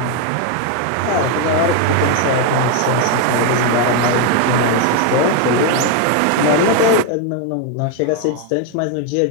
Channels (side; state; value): both; different; correlation 0.01